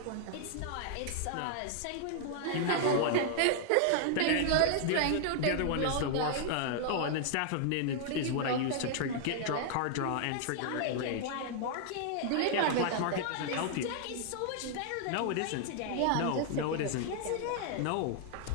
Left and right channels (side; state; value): both; different; correlation 0.00